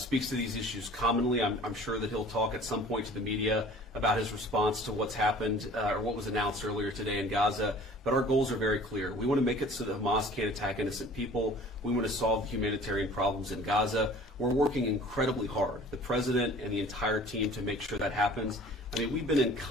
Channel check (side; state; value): both; normal; correlation 0.47